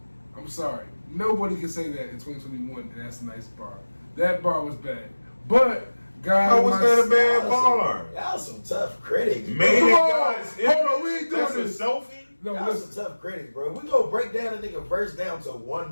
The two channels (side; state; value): both; inverted; correlation -1.00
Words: I'm sorry. Nobody can say that in 2021, and that's a nice bar. That bar was bad. But, God. How was that a bad bar? Y'all some tough critics. Made in God's image. Hold on, we ain't doing this. That's a selfie? No, y'all some tough critics, bro. We go break down a nigga verse down to